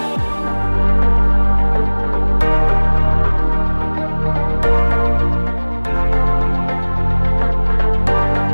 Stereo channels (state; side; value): inverted; both; correlation -1.00